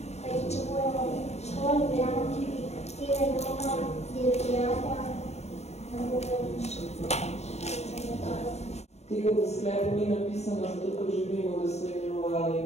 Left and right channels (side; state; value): right; late; 0.31 ms